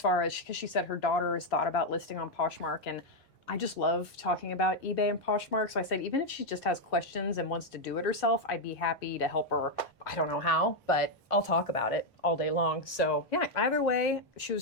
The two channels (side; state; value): both; normal; correlation 0.01